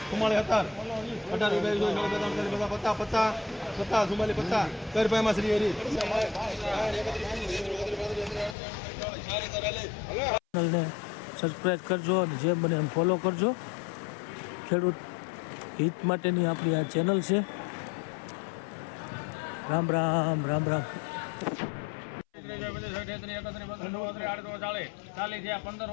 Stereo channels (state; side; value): drops out; right; at 8.6 s